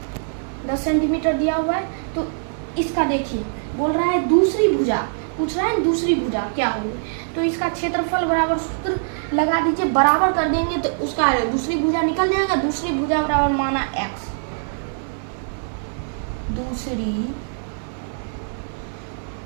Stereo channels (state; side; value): silent; left; 57 dB below the other